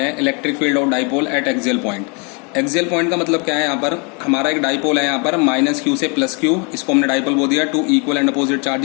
हैं electric field of dipole at axial point. Axial point का मतलब क्या है? यहाँ पर हमारा एक डाइपोल है, यहाँ पर माइनस क्यू से प्लस क्यू, इसको हमने डाइपोल बोल दिया। Two equal and opposite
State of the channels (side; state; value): right; quieter; 33.9 dB